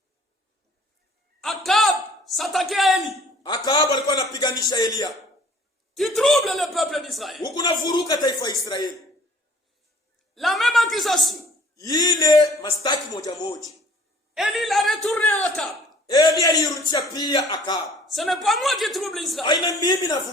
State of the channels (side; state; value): both; normal; correlation 0.54